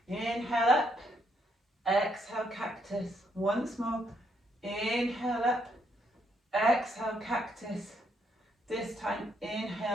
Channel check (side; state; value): both; normal; correlation 0.74